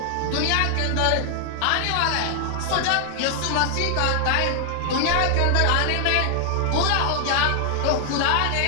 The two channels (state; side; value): different; both; correlation 0.00